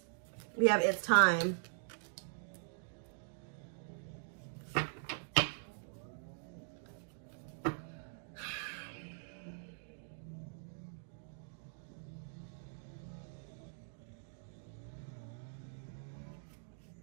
We have it's time.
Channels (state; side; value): silent; left; digital silence